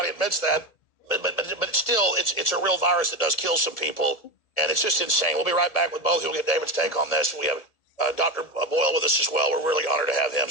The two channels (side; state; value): right; late; 1.7 ms